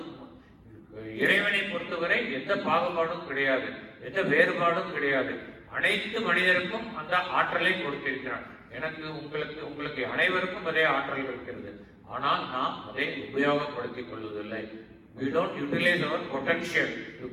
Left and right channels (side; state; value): both; identical; correlation 1.00